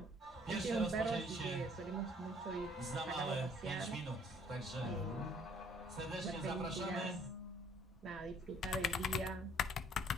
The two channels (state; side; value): normal; both; correlation 0.61